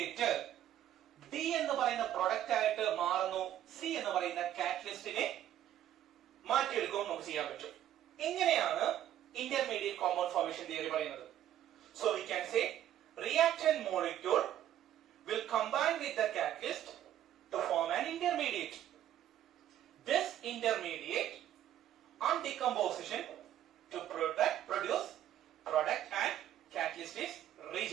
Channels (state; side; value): quieter; left; 11.7 dB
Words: ഡി എന്ന് പറയുന്ന പ്രൊഡക്റ്റ് ആയിട്ട് മാറുന്നു. സി എന്ന് പറയുന്ന കാറ്റലിസ്റ്റിനെ മാറ്റിയെടുക്കുമ്പോൾ നമുക്ക് ചെയ്യാൻ പറ്റും. ഇങ്ങനെയാണ് ഇന്റർമീഡിയറ്റ് കോമ്പൗണ്ട് ഫോർമേഷൻ തിയറി പറയുന്നത്. So we can say reaction molecule will combine with the catalyst to form an intermediate. This intermediate on decomposition to produce product and catalyst is